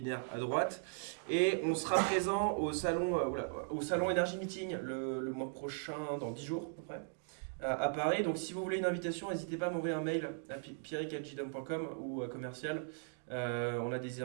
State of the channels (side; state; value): left; silent; digital silence